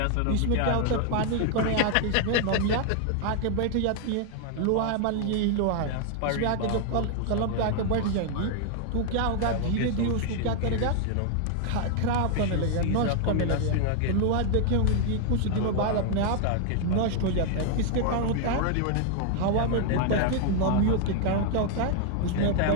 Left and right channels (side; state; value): both; different; correlation 0.00